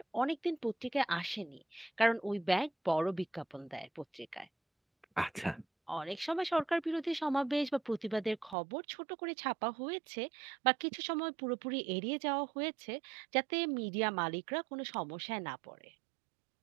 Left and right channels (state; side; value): drops out; left; at 8.6 s